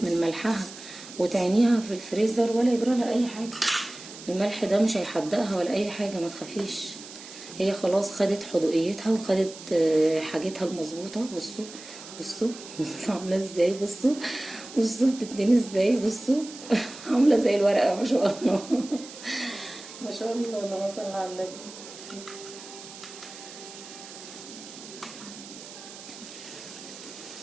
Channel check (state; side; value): noise; right; hiss, 15 dB below the sound